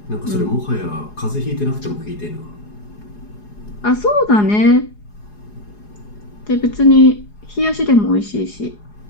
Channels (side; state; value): right; late; 4.8 ms